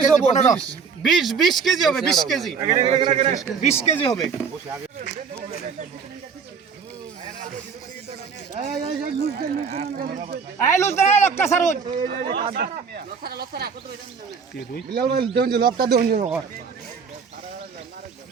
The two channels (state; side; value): quieter; left; 5.9 dB